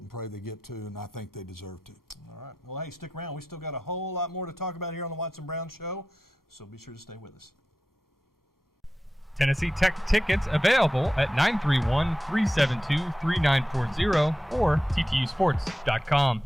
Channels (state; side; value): normal; both; correlation 0.92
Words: pray they get 2, and I think they deserve to. All right. Well, hey, stick around. We still got a whole lot more to talk about here on the Watson Brown Show, so be sure to stay with us. Tennessee Tech tickets available at 931-372-3940 or ttusports.com.